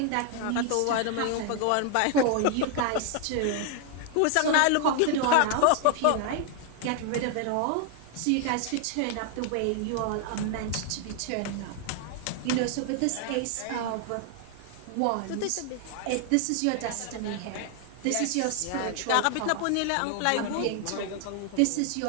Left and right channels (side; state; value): both; different; correlation 0.00